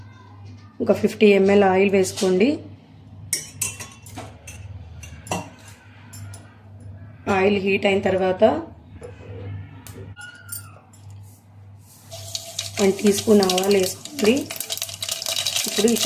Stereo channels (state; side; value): identical; both; correlation 1.00